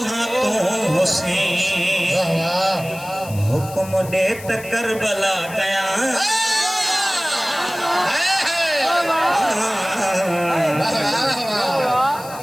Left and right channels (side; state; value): left; noise; hiss, 16 dB below the sound